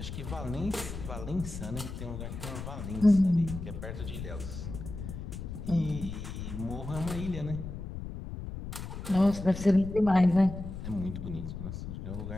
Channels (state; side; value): noise; left; rumble, 8 dB below the sound